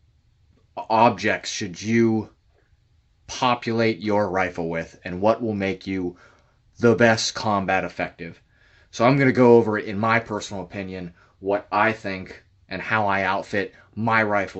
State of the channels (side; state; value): both; identical; correlation 1.00